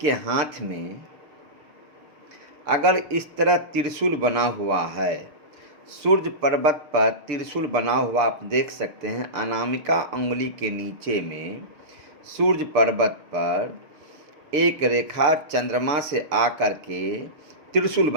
हाथ में अगर इस तरह त्रिशूल बना हुआ है, सूर्य पर्वत पर त्रिशूल बना हुआ आप देख सकते हैं। अनामिका अंगुली के नीचे में सूर्य पर्वत पर एक रेखा चंद्रमा से आकर के त्रिशूल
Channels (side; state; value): left; late; 6.6 ms